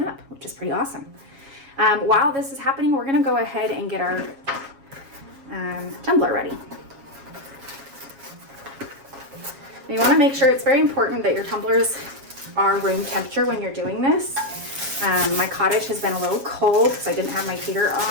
up, which is pretty awesome. While this is happening, we're gonna go ahead and get our tumbler ready. You want to make sure, it's very important that your tumblers are room temperature when you're doing this. My Cottage has been a little cold because I didn't have my heater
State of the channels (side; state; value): left; late; 7.3 ms